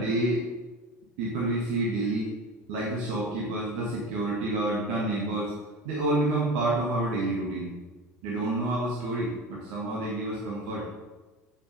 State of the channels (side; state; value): both; normal; correlation 0.30